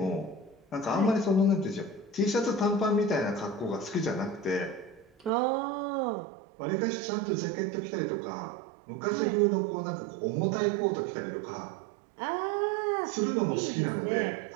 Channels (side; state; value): left; drops out; at 5.3 s